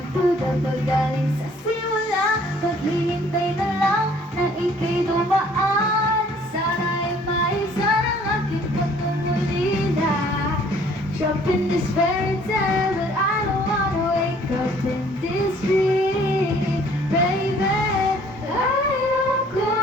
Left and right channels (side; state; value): both; normal; correlation 0.57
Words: pag galing sa simula. Paghihintay na lang na ika'y dumaan. Sana'y maisan ang aking pagmumulila. Trapped in this fairy tale, but I don't wanna wake up in this dream, baby.